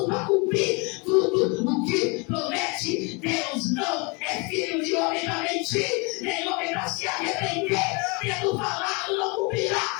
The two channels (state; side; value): quieter; right; 30.4 dB